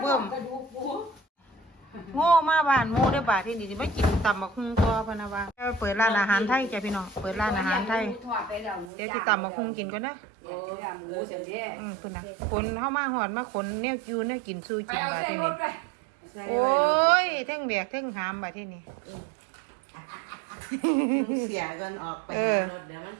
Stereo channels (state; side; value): drops out; left; at 8.9 s